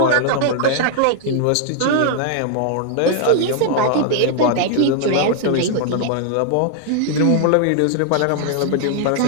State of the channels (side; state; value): both; different; correlation 0.00